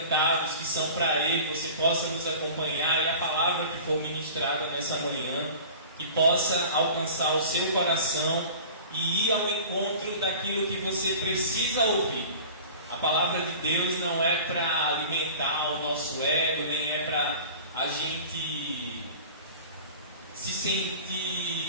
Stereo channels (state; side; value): inverted; both; correlation -0.40